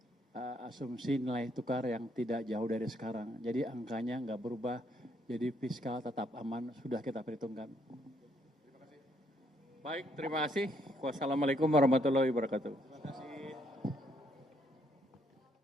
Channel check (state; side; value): normal; both; correlation 0.71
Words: asumsi nilai tukar yang tidak jauh dari sekarang. Jadi angkanya nggak berubah, jadi fiskal tetap aman, sudah kita perhitungkan. Baik, terima kasih. Wassalamualaikum warahmatullahi wabarakatuh.